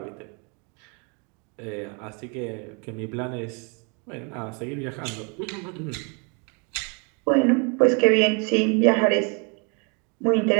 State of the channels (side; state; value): left; quieter; 34.6 dB